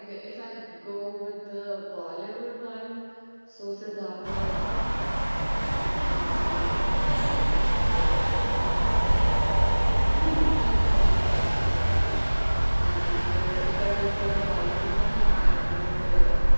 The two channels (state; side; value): inverted; both; correlation -1.00